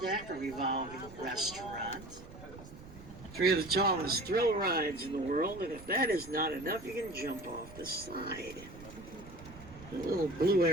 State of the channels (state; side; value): noise; right; rumble, 17 dB below the sound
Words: deck, a revolving restaurant. 3 of the tallest thrill rides in the world, and if that is not enough, you can jump off the side. The little blue